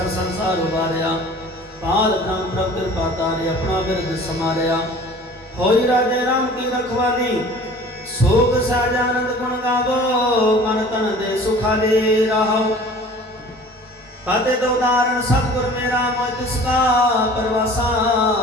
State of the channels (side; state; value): both; normal; correlation 0.46